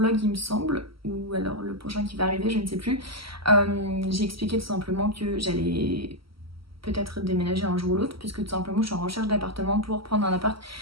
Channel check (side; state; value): left; late; 0.75 ms